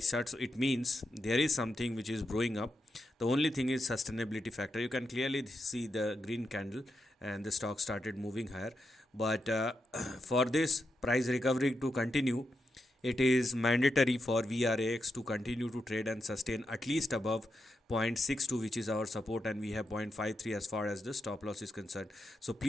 chart, so it means there is something which is growing up. The only thing is sustainability factor. You can clearly see the green candle and the stock started moving higher, but for this price recovery to continue, it is mandatory for VRAX to continue to trade and sustain at least above 0.62, which is our support, and we have 0.53 as far as the stop loss is concerned. So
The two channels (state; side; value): normal; both; correlation 0.86